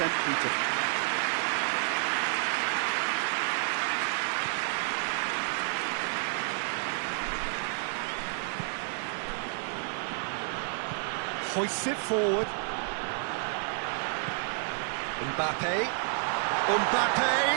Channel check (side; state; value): left; silent; 58 dB below the other